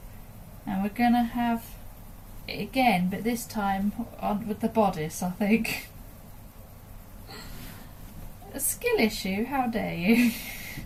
and we're gonna have it again, but this time on with the bodice, I think. A skill issue, how dare you?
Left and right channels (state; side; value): identical; both; correlation 1.00